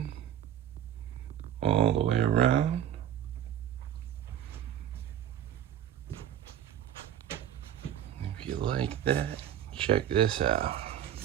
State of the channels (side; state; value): left; quieter; 10.4 dB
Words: all the way around. If you like that, check this out.